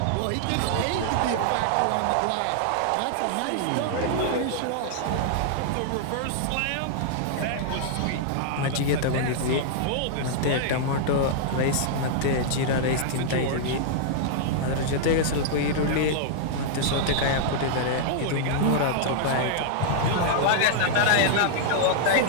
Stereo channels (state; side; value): different; both; correlation -0.01